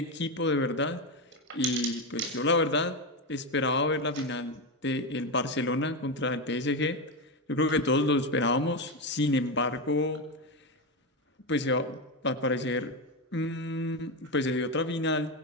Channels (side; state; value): both; normal; correlation 0.12